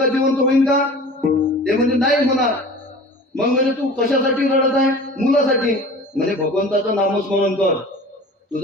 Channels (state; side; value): normal; both; correlation 0.40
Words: जिवंत होईल का? ते म्हणजे नाही होणार. मग म्हणजे तू कशासाठी रडत आहे? मुलासाठी. म्हणजे भगवंताचं नामस्मरण कर.